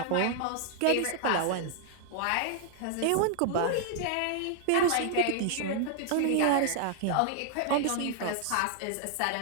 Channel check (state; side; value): different; both; correlation 0.00